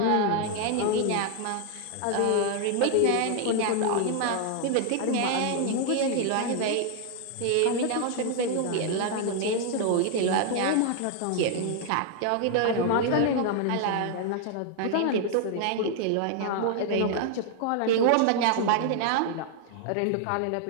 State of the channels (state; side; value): different; both; correlation 0.00